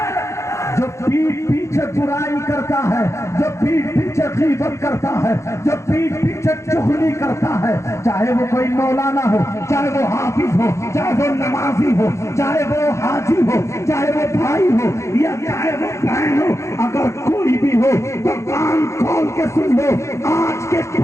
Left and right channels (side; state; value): right; late; 0.14 ms